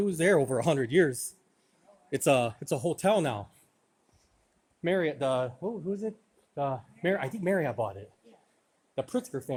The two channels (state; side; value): identical; both; correlation 1.00